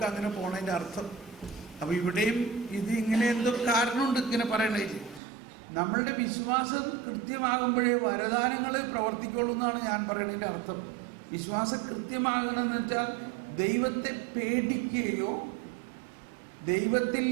അങ്ങനെ പോണതിൻ്റെ അർത്ഥം. അപ്പൊ ഇവിടെയും ഇത് ഇങ്ങനെ എന്തോ കാരണമുണ്ട് ഇങ്ങനെ പറയണേ. നമ്മളുടെ വിശ്വാസം കൃത്യമാകുമ്പോഴേ വരദാനങ്ങൾ പ്രവർത്തിക്കുള്ളൂ എന്നാണ് ഞാൻ പറയുന്നതിൻ്റെ അർത്ഥം. വിശ്വാസം കൃത്യമാകണമെന്ന് വെച്ചാൽ ദൈവത്തെ പേടിക്കുകയോ ദൈവത്തിൽ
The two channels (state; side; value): drops out; left; at 5.2 s